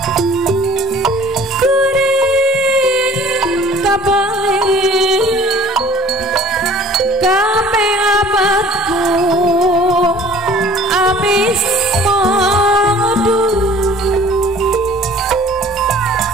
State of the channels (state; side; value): normal; both; correlation 0.50